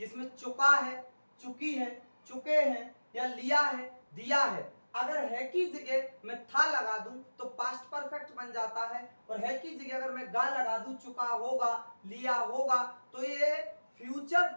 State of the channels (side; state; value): both; inverted; correlation -1.00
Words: चुका है, चुकी है, चुके हैं या लिया है, दिया है। अगर है की जगह मैं था लगा दूं तो पास्ट परफेक्ट बन जाता है, और है की जगह अगर मैं गा लगा दूं, चुका होगा, लिया होगा, तो ये फ्यूचर